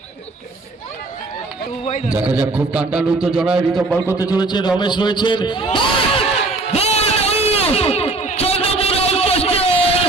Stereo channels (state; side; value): quieter; left; 3.1 dB